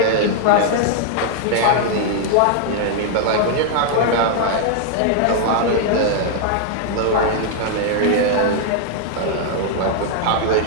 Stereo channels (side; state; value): both; different; correlation 0.00